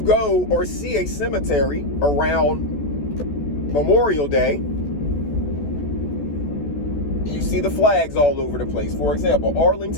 or see a cemetery around Memorial Day, you see the flags all over the place. For example,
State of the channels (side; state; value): right; late; 14 ms